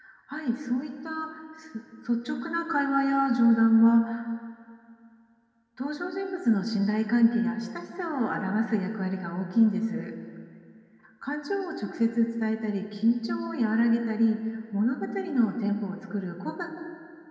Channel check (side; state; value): both; identical; correlation 1.00